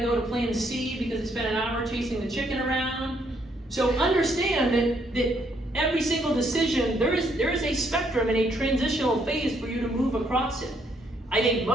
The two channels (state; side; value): normal; both; correlation 0.71